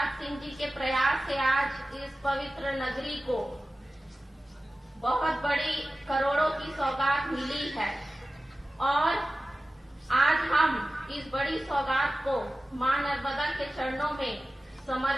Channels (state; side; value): normal; both; correlation 0.96